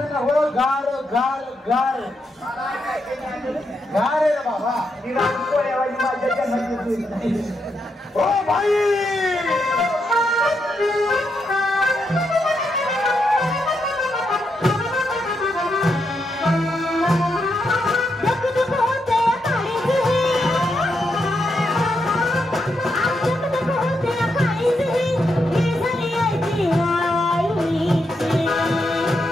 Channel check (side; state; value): both; normal; correlation 0.82